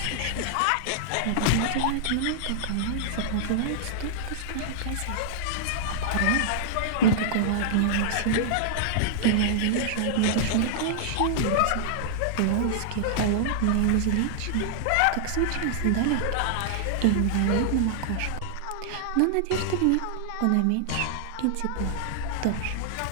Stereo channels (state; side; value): different; both; correlation -0.01